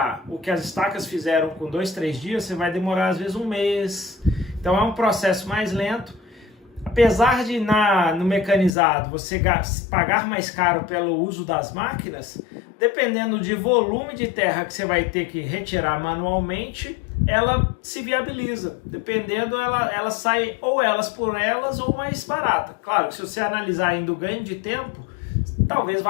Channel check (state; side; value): drops out; right; at 8.7 s